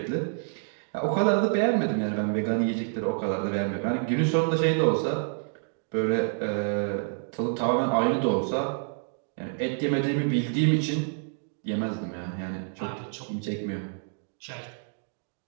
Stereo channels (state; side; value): silent; left; 58 dB below the other